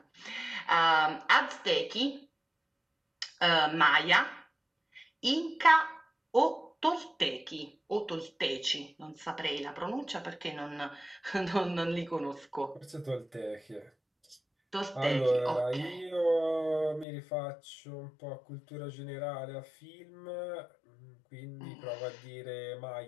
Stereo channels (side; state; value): right; drops out; at 17.1 s